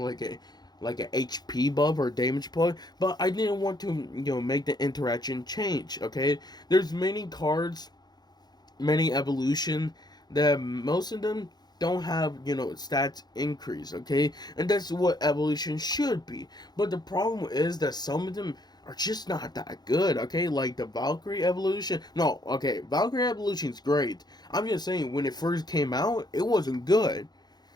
like a HP buff or damage buff, but I didn't want to, make the interaction change. Okay, there's many cards, many evolution that most of them don't have stats increase, okay, and that's what evolution should be. But the problem is that some of them are just not that good, okay, like the Valkyrie evolution. No, okay, Valkyrie evolution is great. I'm just saying when it first came out it wasn't good,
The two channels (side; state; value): right; late; 0.20 ms